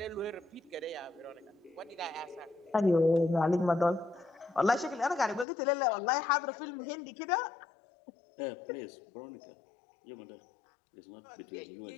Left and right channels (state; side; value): drops out; right; at 5.5 s